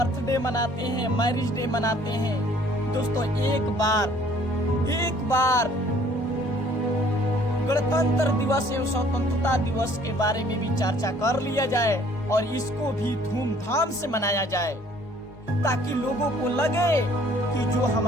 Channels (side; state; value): both; normal; correlation 0.58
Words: मनाते हैं, मैरिज डे मनाते हैं। दोस्तों एक बार गणतंत्र दिवस एवं स्वतंत्रता दिवस के बारे में भी चर्चा कर लिया जाए और इसको भी धूमधाम से मनाया जाए, ताकि लोगों को लगे कि जो